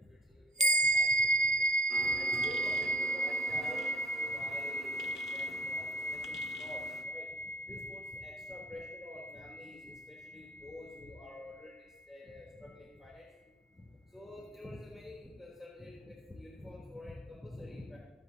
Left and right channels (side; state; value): both; normal; correlation 0.50